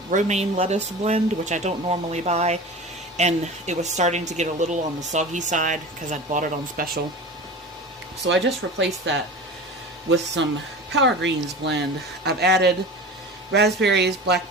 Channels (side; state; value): both; normal; correlation 0.33